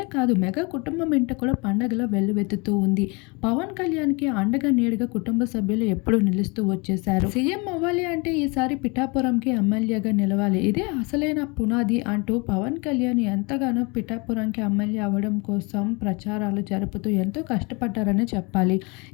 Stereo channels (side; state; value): right; quieter; 28.9 dB